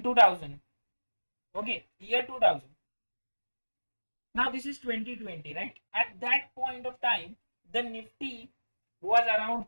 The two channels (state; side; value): inverted; both; correlation -1.00